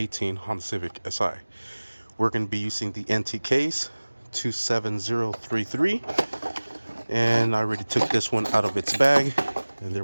Honda Civic Si. We're going to be using the NTKs 27033, and I already took this one out of its bag, and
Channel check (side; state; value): both; inverted; correlation -1.00